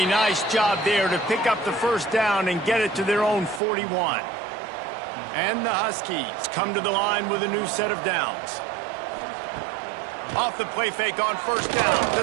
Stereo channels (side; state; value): left; drops out; at 3.6 s